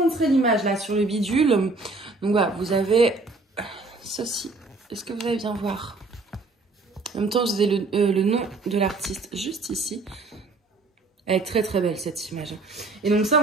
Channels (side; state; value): left; quieter; 3.5 dB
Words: l'image là sur le bidule. Donc voilà, vous avez ceci. Est-ce que vous allez bien voir? En même temps, je vous ai le nom de l'artiste juste ici. Elle est très très belle cette image. Et donc ça,